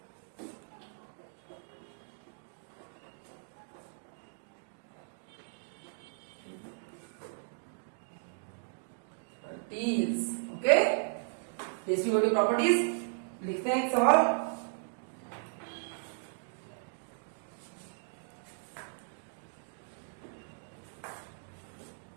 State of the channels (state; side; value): silent; left; digital silence